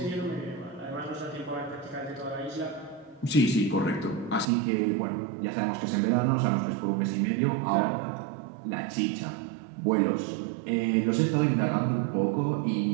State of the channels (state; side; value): drops out; left; at 4.5 s